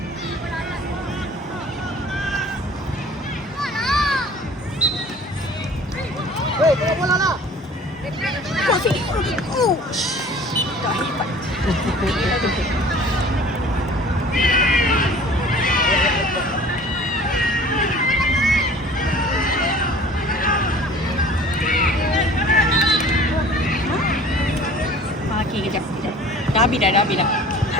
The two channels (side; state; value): both; normal; correlation 0.47